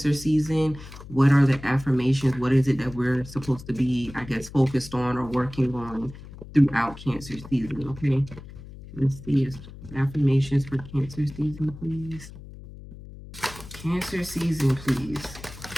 season. What are the affirmations? What is it that we're supposed to be, I guess, focused on or working on throughout Cancer season, okay? Let's see. Affirmations for Cancer season, please. Cancer season, please.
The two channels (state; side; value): noise; left; hum, 15 dB below the sound